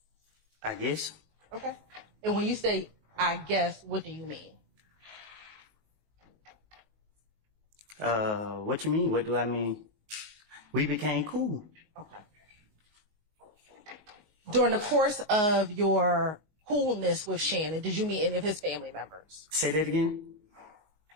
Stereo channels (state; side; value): late; left; 19 ms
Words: I guess. Okay. And when you say, I guess, what do you mean? What you mean? What do I mean? We became cool. Okay. During the course of your coolness with Shannon, did you meet any of his family members? Say that again.